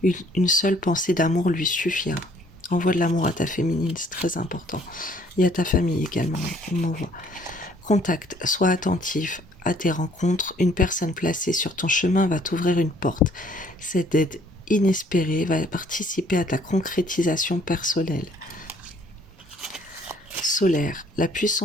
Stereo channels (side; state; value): both; normal; correlation 0.61